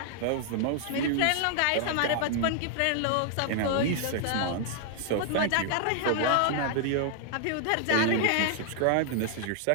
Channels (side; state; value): both; different; correlation -0.01